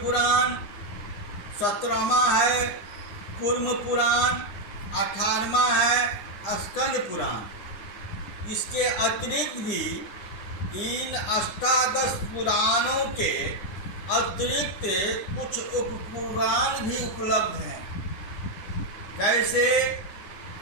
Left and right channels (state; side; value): late; right; 9.8 ms